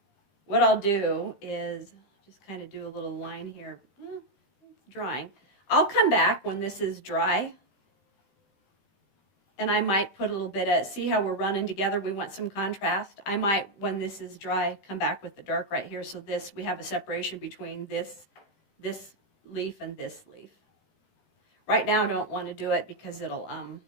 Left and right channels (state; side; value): late; right; 15 ms